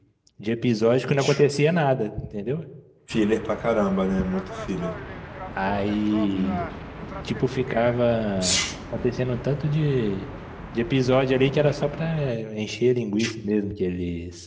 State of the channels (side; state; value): both; identical; correlation 1.00